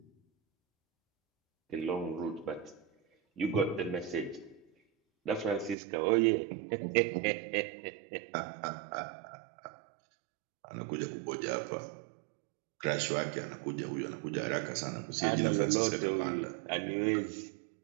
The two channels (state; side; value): drops out; left; at 5.8 s